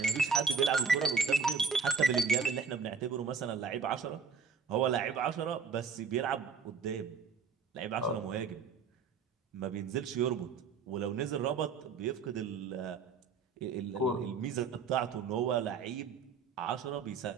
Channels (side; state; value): left; quieter; 5.4 dB